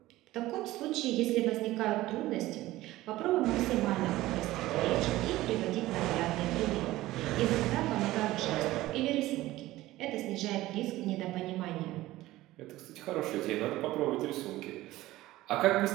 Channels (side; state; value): left; quieter; 16.9 dB